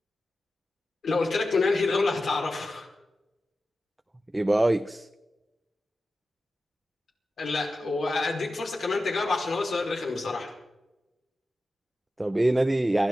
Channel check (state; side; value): normal; both; correlation 0.93